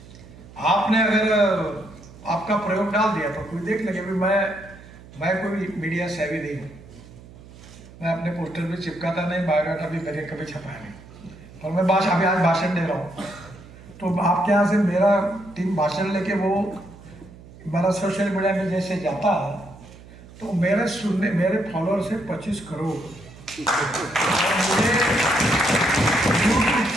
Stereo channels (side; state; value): right; noise; hum, 20 dB below the sound